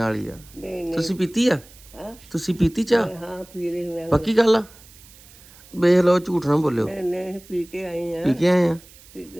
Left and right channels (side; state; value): right; noise; hiss, 23 dB below the sound